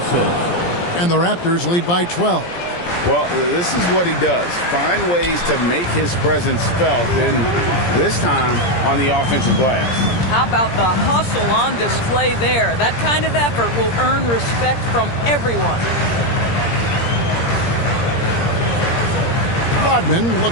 And the Raptors lead by 12. Well, this is what he does. Find ways to make his presence felt, and this time on the offensive glass. How about the hustle on display there? That kind of effort will earn respect from everyone. Rodman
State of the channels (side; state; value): right; late; 17 ms